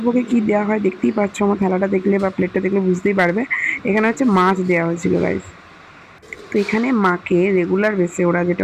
ভোগে কি দেওয়া হয় দেখতেই পাচ্ছ, আমার থালাটা দেখলে বা প্লেটটা দেখলে বুঝতেই পারবে। এখানে হচ্ছে মাছ দেওয়া হয়েছিল গাইস। তো এখানে মাকে রেগুলার বেসে ওরা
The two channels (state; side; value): identical; both; correlation 1.00